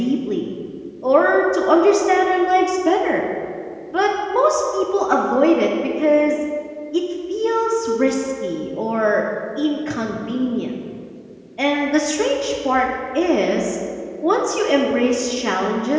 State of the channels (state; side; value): identical; both; correlation 1.00